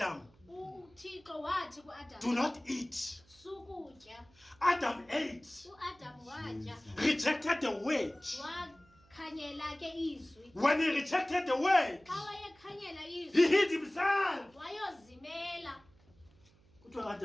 uThixo wathi kuAdam, do not eat. sukutya. Adam ate, uAdam watya, rejected the word. wakhanyela ke izwi. When he rejected the word, Xa wayekhanyela izwi, he hid himself. wayozimela. Kuthiwa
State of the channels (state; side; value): noise; right; hum, 30 dB below the sound